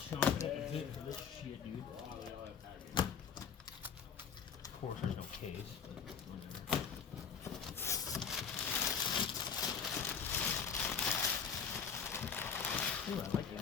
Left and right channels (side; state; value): right; quieter; 6.6 dB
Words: show up a bit for this shit, dude. Of course, there's no case. Ooh, I like that.